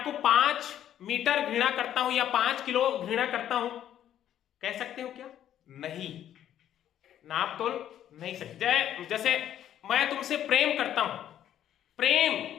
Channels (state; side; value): quieter; right; 10.9 dB